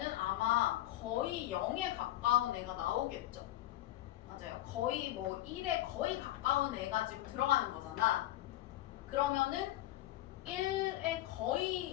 아마 거의 0에 가까운 애가 나오겠죠. 맞아요. 거의 뭐 1에 거의 가까운 애가 지금 들어가는 거잖아. 그러면은 1에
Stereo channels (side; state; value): right; quieter; 15.2 dB